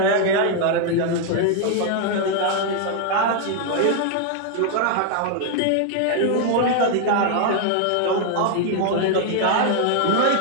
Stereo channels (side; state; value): both; different; correlation 0.00